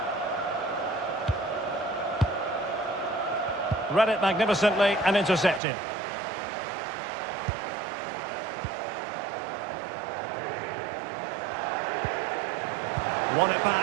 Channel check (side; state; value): left; drops out; at 5.6 s